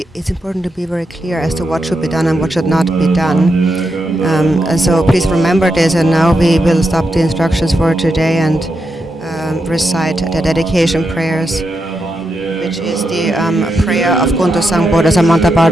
it's important to be very clear as to what should be done and what should not be done. And so please remember this, and now we will stop the instructions for today and recite the dedication prayers, which is the prayer of Kuntu Sangpo, the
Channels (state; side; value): normal; both; correlation 0.85